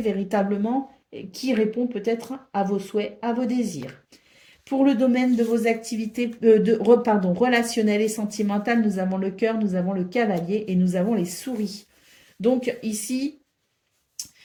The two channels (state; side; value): identical; both; correlation 1.00